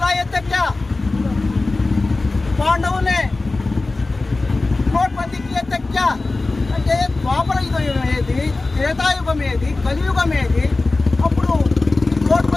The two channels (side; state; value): right; quieter; 3.3 dB